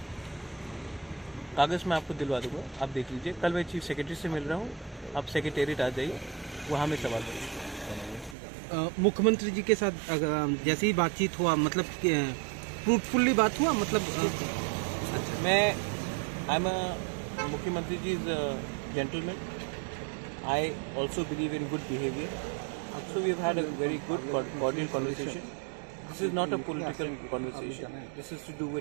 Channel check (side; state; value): left; drops out; at 8.3 s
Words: कागज़ मैं आपको दिलवा दूंगा, आप देख लीजिए। कल मैं चीफ सेक्रेटरी से मिल रहा हूँ, आप सेक्रेटेरिएट आ जाइए, वहाँ में सवाल करिए। मुख्यमंत्री जी के साथ जैसे ही बातचीत हुआ, मतलब फ्रूटफुल्ली बात हुआ, मतलब मैं आई एम अ मुख्यमंत्री ji is gentleman, I also believe in good behaviour, so we have had a very good cordial conversation. This is not a political conversation, this is to do